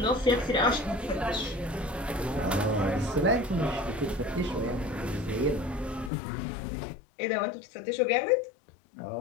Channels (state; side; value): drops out; right; at 6.1 s